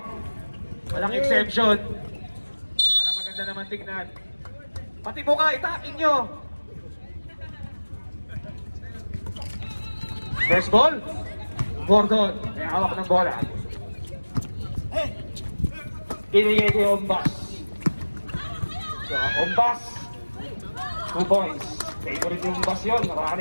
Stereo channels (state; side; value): inverted; both; correlation -1.00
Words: Walang exception. Para maganda naman tignan. Pati buka, itakin nyo. First ball. Gordon. May hawak ng bola. Pinigay kay Ombas. So, Ombas. 2 points. Favorite yung Ombas yun.